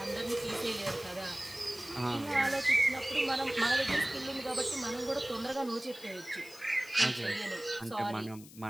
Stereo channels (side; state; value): left; noise; hiss, 19 dB below the sound